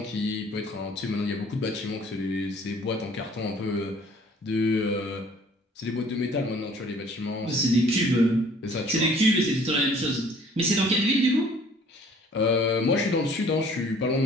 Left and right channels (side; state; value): both; normal; correlation 0.55